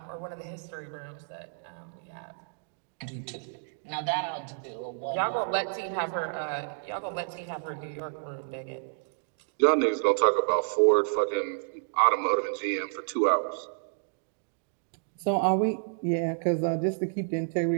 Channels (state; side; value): silent; left; digital silence